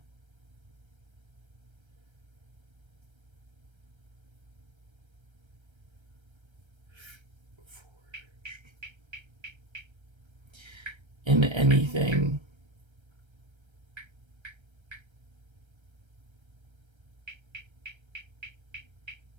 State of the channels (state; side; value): late; left; 1.3 ms